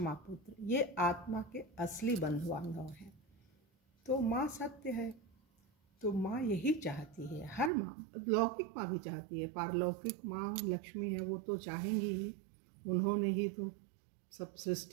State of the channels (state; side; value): drops out; left; at 7.7 s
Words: पुत्र, ये आत्मा के असली बंधु बांधव हैं। तो माँ सत्य है, तो माँ यही चाहती है। हर माँ, लौकिक माँ भी चाहती है, पारलौकिक माँ लक्ष्मी है, वो तो चाहेंगी ही। उन्होंने ही तो सब